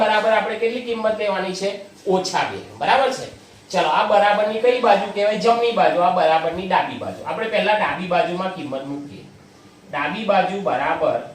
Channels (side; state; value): both; identical; correlation 1.00